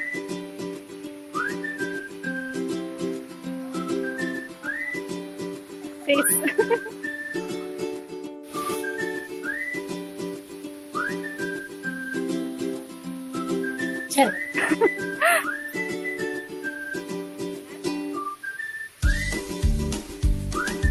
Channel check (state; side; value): identical; both; correlation 1.00